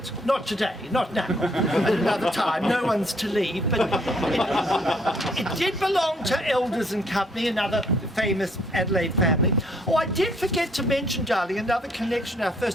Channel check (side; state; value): both; normal; correlation 0.66